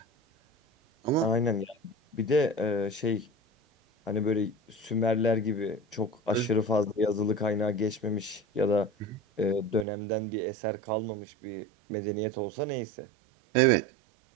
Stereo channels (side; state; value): left; drops out; at 9.9 s